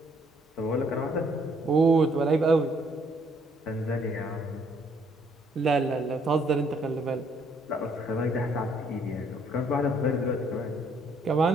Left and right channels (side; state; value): both; normal; correlation 0.67